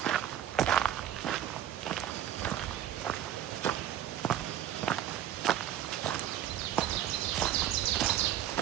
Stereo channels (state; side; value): quieter; left; 10.9 dB